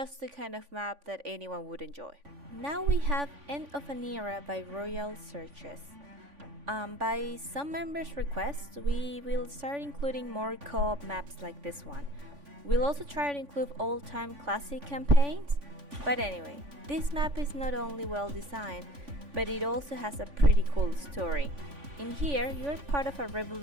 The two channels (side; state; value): left; late; 3.5 ms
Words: the kind of map that anyone would enjoy. Now we have End of an Era by Royal Searches. By some members' request, we will start including more co-op maps like this one. We'll also try to include all-time classic campaigns. But anyway, this map is not only well designed, but it also has a pretty cool story. In here, you're part of a